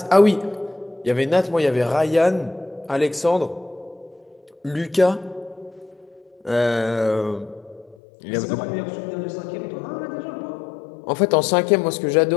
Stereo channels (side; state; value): right; drops out; at 8.0 s